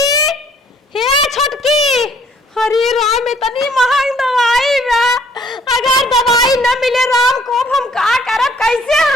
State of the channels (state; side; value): normal; both; correlation 0.61